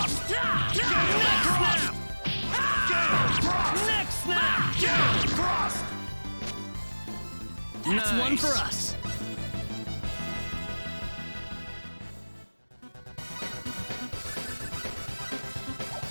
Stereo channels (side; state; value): both; inverted; correlation -1.00